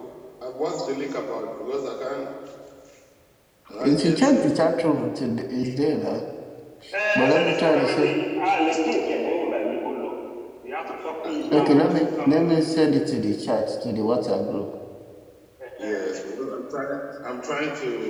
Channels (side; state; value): both; identical; correlation 1.00